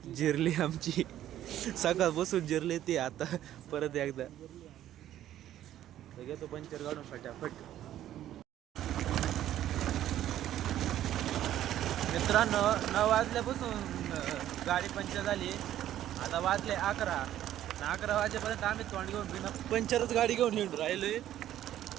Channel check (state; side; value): quieter; left; 12.2 dB